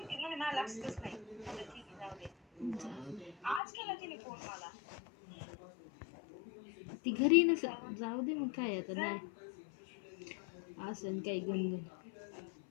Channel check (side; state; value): right; drops out; at 3.6 s